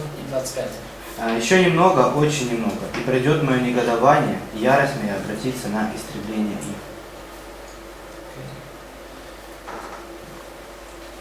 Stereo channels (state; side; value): identical; both; correlation 1.00